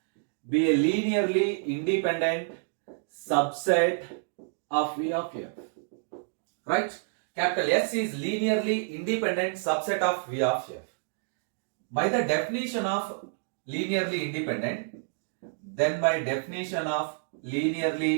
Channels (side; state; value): left; silent; digital silence